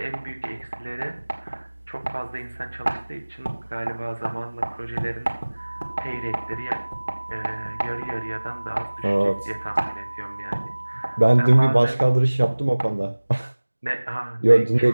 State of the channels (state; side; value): inverted; both; correlation -1.00